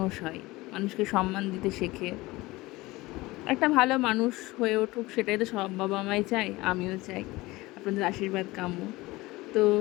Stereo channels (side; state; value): right; quieter; 20.4 dB